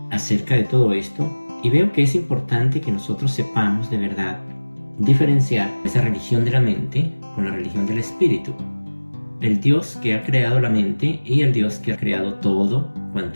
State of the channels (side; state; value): both; inverted; correlation -1.00